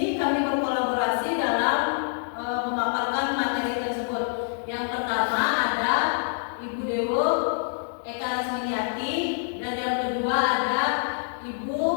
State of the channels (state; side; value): silent; right; 61 dB below the other